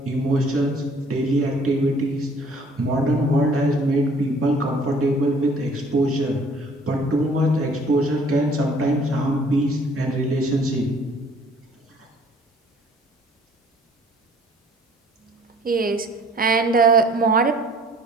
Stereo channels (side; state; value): both; normal; correlation 0.56